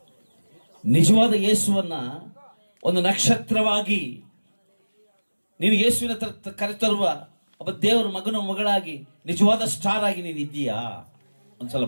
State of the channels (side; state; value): both; inverted; correlation -1.00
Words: ನಿಜವಾದ ಯೇಸುವನ್ನ ಒಂದು ನಕ್ಷತ್ರವಾಗಿ ನೀನು ಯೇಸುವಿನ ಕರೆತರುವ ಒಬ್ಬ ದೇವರ ಮಗನ ಮಗಳಾಗಿ, ನಿಜವಾದ ಸ್ಟಾರ್ ಆಗಿ ನೀನು ಇದ್ದೀಯಾ?